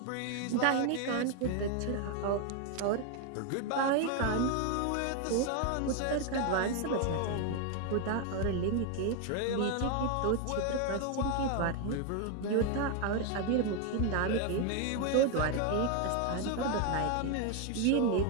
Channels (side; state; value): both; different; correlation 0.01